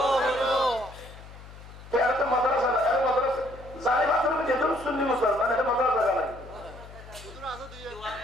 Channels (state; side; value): noise; left; hum, 17 dB below the sound